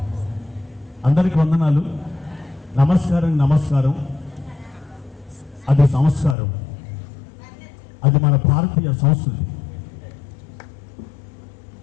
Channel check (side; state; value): right; drops out; at 6.4 s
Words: అందరికీ వందనాలు. నమస్కారం. నమస్కారం అది సంస్కారం, అది మన భారతీయ సంస్కృతి.